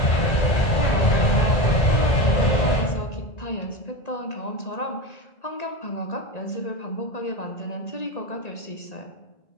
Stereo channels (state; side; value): late; right; 1.9 ms